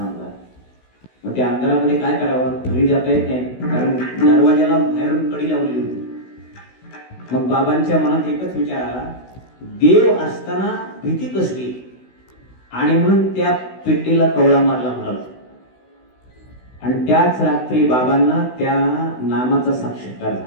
मग त्या अंधारामध्ये काय करावं, घरी जाता येत नाही, कारण दरवाजाला बाहेरून कडी लावलेली होती. मग बाबांच्या मनात एकच विचार आला, देव असताना भीती कसली, आणि म्हणून त्या पेटीला कवळा मारला महाराज. आणि त्याच रात्री बाबांना त्या नामाचा साक्षात्कार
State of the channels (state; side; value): late; right; 16 ms